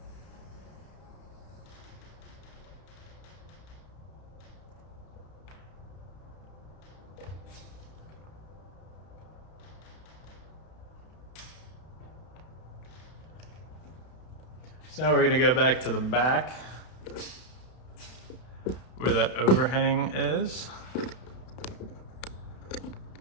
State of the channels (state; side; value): late; right; 32 ms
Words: So now we're gonna go back to the back where that overhang is.